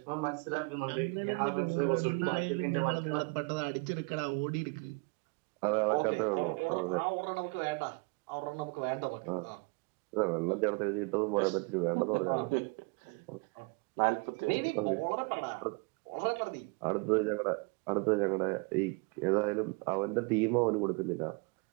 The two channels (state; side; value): quieter; left; 30.5 dB